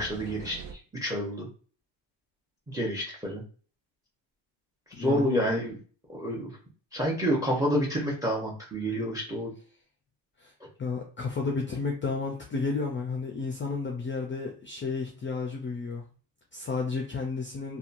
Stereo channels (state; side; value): normal; both; correlation 0.49